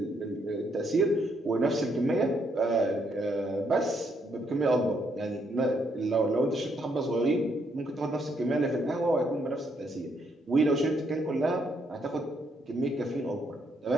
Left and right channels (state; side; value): normal; both; correlation 0.74